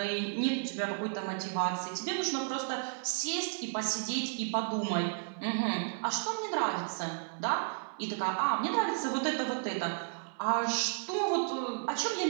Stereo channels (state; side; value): silent; left; 56 dB below the other